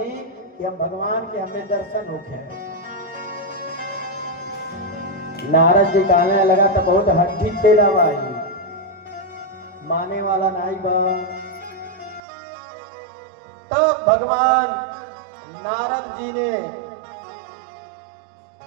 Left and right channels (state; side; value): drops out; left; at 12.2 s